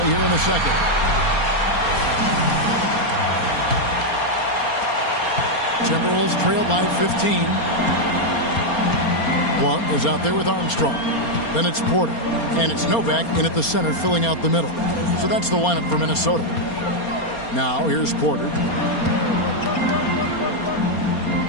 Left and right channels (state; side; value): late; right; 4.3 ms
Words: here in the second. Timberwolves trail by 15. Blunt is out there with Armstrong. Then it's Porter. And it's Novak in at the center filling out the middle. So that's the lineup for Minnesota. Now here's Porter.